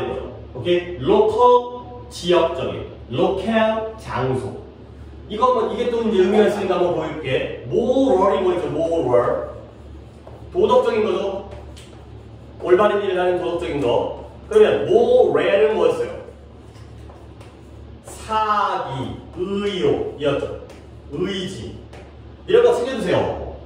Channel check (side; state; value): both; identical; correlation 1.00